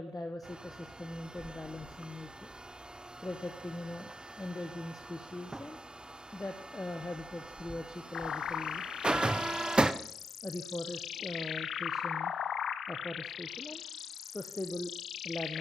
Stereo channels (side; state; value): both; normal; correlation 0.84